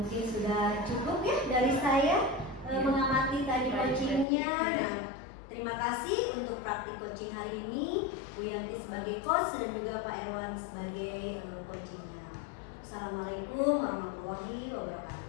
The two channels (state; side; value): drops out; right; at 4.2 s